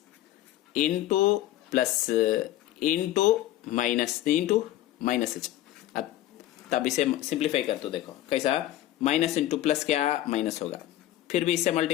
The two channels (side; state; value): right; quieter; 14.1 dB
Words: into plus into minus into minus. अब तब इसे सिंप्लीफाई कर तो देखो कैसा, माइनस इंटू प्लस क्या माइनस होगा, फिर भी इससे